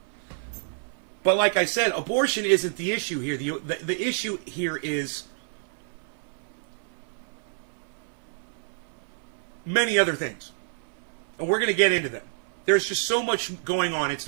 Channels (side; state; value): left; silent; 59 dB below the other